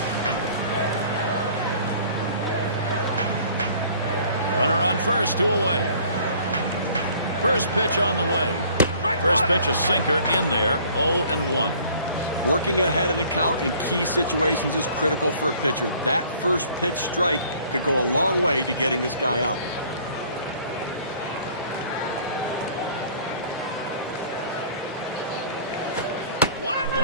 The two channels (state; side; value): inverted; both; correlation -0.54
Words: Runner on first, 2 away. First pitch on the way. First pitch a sinker in there, 0-1. Working ahead in the count in key situations is critical for a pitcher. That first pitch strike could go a long way to getting this guy out.